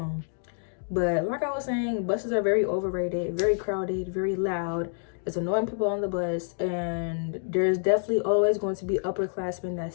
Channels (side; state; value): right; silent; digital silence